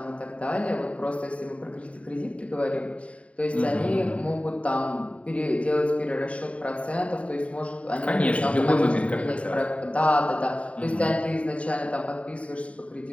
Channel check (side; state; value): right; late; 0.065 ms